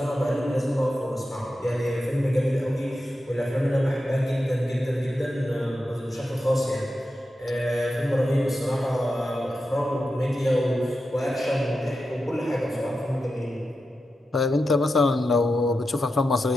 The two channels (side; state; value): both; normal; correlation 0.90